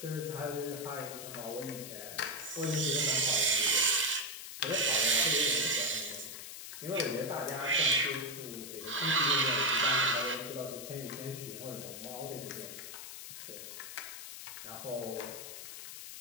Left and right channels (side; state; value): left; noise; hiss, 10 dB below the sound